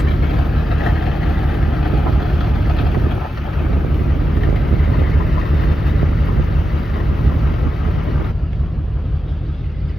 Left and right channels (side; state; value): both; normal; correlation 0.90